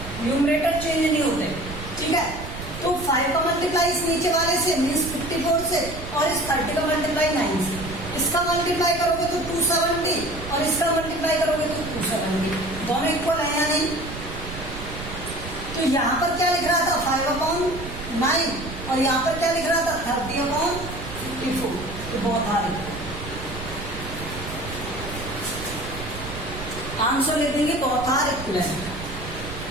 न्यूमरेटर चेंज नहीं होते। ठीक है, तो 5 का मल्टीप्लाई इस नीचे वाले से मीन्स 54 से, और इस 30 का मल्टीप्लाई 9 से, इसका मल्टीप्लाई करोगे तो 270 और इसका मल्टीप्लाई करोगे तो 270, दोनों इक्वल है या नहीं। तो यहाँ पर क्या लिख रहा था 5/9 और यहाँ पर क्या लिख रहा था 30/54, तो बहुत हार्ड है, आंसर लिख देंगे बहुत हार्ड इक्विवेलेंट।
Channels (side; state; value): right; noise; rumble, 10 dB below the sound